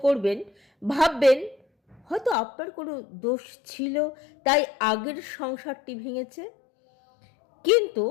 করবেন, ভাববেন হয়তো আপনার কোনো দোষ ছিল, তাই আগের সংসারটি ভেঙেছে। কিন্তু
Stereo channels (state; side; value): drops out; right; at 2.4 s